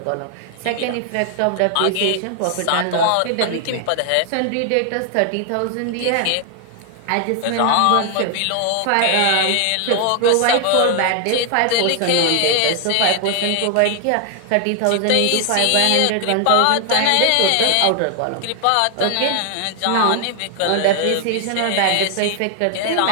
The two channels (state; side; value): different; both; correlation 0.00